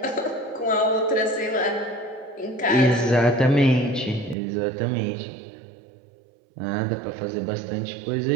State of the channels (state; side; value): drops out; left; at 4.4 s